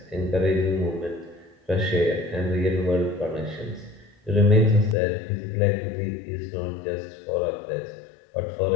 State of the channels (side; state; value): right; drops out; at 5.0 s